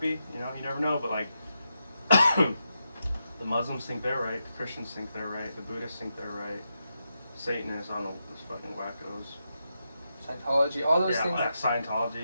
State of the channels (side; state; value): both; inverted; correlation -0.86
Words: you know, you never know, but like, the Muslims think they're right, the Christians think they're right, the Buddhists think they're right, Satanists, I don't know, those fucking wackos. Scientology, all those things. Yeah,